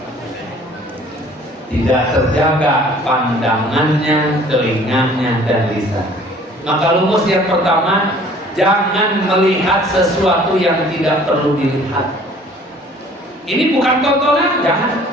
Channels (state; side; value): normal; both; correlation 0.53